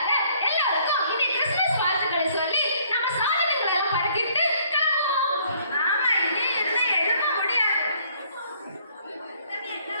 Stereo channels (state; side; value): inverted; both; correlation -0.63